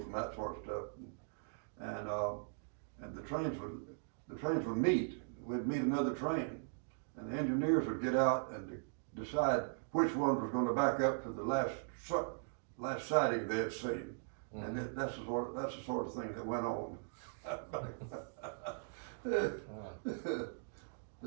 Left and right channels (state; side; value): silent; left; digital silence